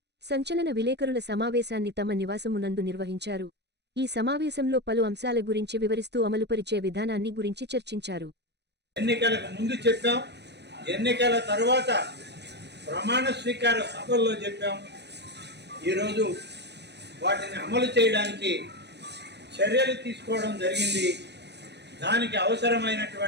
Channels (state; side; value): late; left; 0.50 ms